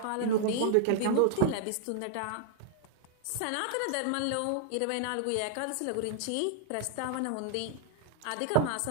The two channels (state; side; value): different; both; correlation 0.00